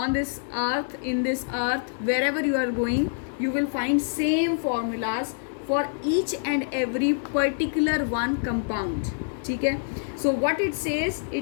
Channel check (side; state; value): right; silent; digital silence